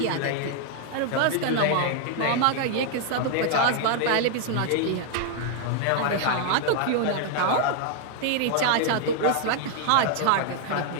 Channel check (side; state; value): both; different; correlation 0.00